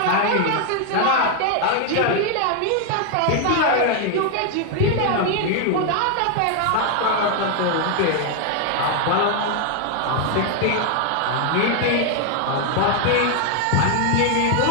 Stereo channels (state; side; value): different; both; correlation 0.01